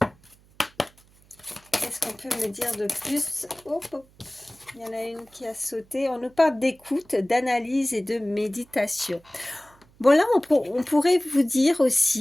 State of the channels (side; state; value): right; noise; hum, 30 dB below the sound